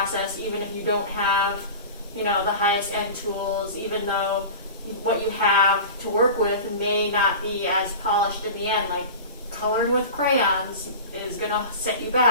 even if you don't have, the highest end tools, even though what you have to work with may not be as polished in the end. Like coloring with crayons is going to set you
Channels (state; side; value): inverted; both; correlation -0.33